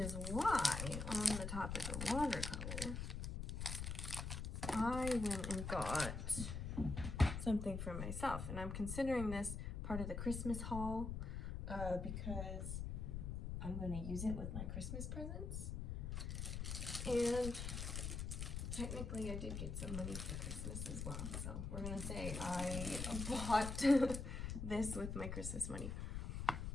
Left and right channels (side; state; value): left; noise; rumble, 4 dB below the sound